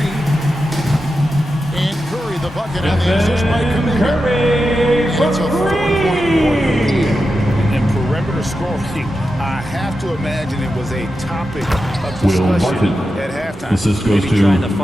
And Curry the bucket on the assist by Kuminga. And it's a 4-point quarter. And perimeter scoring, I have to imagine it was a topic of discussion at halftime. Assist goes Maybe to trying to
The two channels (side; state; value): right; noise; hum, 27 dB below the sound